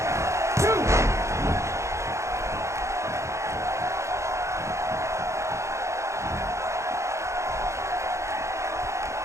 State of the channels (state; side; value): late; left; 0.14 ms